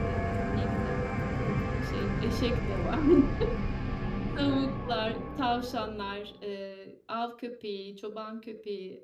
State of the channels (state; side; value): identical; both; correlation 1.00